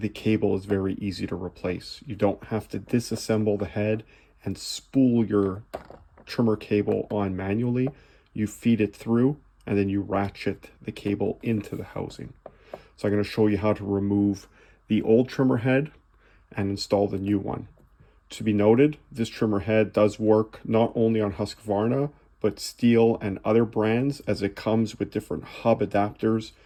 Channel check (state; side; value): identical; both; correlation 1.00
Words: cable is very easy to replace. You don't have to disassemble the head and spool your trimmer cable on manually. You feed it through and then you ratchet the cable into the housing. So I'm going to show you how to remove the old trimmer head and install the new one. To be noted, this trimmer head does work not only on Husqvarna, but Stihl and other brands, as it comes with different hub adapters